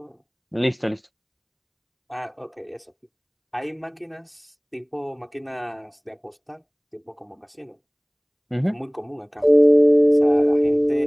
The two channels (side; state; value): both; identical; correlation 1.00